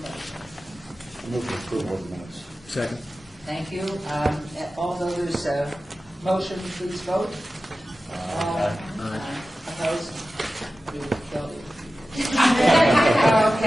motion. Move to approval of the minutes. Second. Thank you. All those motion, please vote. Opposed? We will kill you.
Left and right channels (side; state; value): both; normal; correlation 0.94